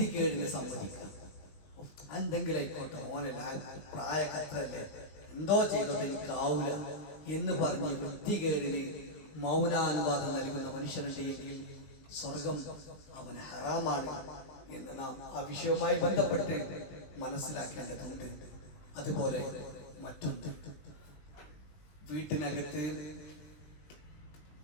സമ്മതിക്കുക. എന്തെങ്കിലും ആയിക്കോട്ടെ, ഓനല്ല, പ്രായക്കത്രല്ലേ, എന്തോ ചെയ്തോട്ടെ, എനിക്കാവൂല എന്ന് പറഞ്ഞ് വൃത്തികേടിന് മൗനാനുവാദം നൽകുന്ന മനുഷ്യനുണ്ടെങ്കിൽ സ്വർഗം അവന് ഹറാമാണ് എന്ന് നാം ആ വിഷയവുമായി ബന്ധപ്പെട്ട് മനസ്സിലാക്കേണ്ടതുണ്ട്. അതുപോലെ മറ്റൊന്ന്, വീട്ടിനകത്ത്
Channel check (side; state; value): right; late; 19 ms